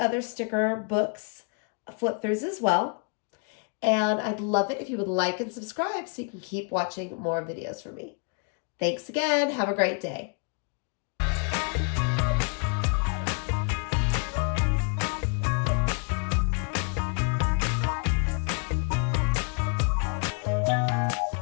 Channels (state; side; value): quieter; right; 38.4 dB